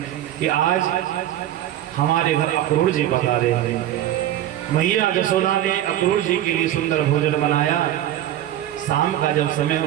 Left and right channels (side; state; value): left; quieter; 12.5 dB